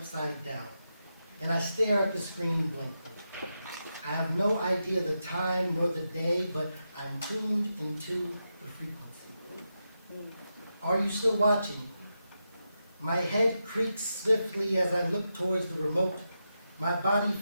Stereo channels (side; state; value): both; inverted; correlation -0.87